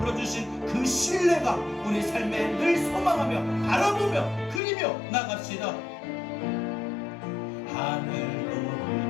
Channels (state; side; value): drops out; right; at 4.6 s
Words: 주신 그 신뢰가 우리 삶에 늘 소망하며 바라보며 그리며 나갑시다.